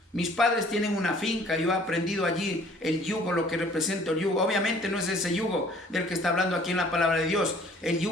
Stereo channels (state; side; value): normal; both; correlation 0.55